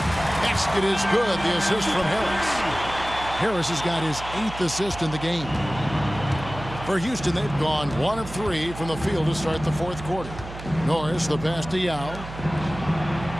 Basket is good. The assist from Harris. Harris has got his 8th assist in the game. For Houston, they've gone 1 of 3 from the field to start the fourth quarter. Norris, the pass to Yao.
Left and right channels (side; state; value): right; noise; hum, 12 dB below the sound